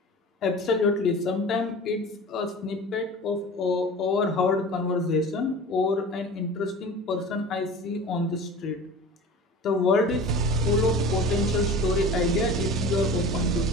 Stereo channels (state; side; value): normal; both; correlation 0.38